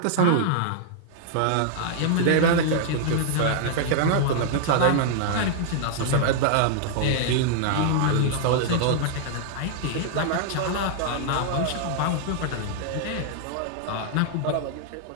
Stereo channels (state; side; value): different; both; correlation -0.01